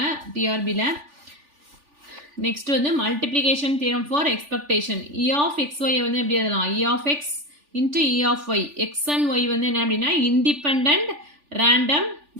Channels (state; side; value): late; left; 3.4 ms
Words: டிஆர்பியில். நெக்ஸ்ட் வந்து multiplication theorem for expectation. E of xy வந்து எப்படி எழுதலாம்? E of x into e of y. X and y வந்து என்ன அப்படின்னா independent random